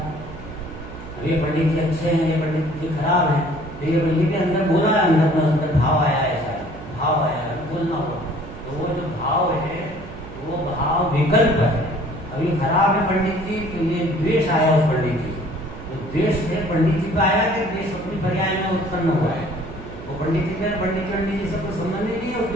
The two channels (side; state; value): right; noise; hum, 14 dB below the sound